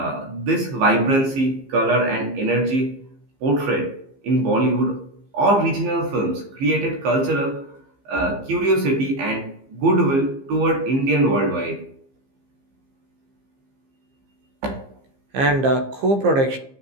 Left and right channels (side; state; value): left; late; 15 ms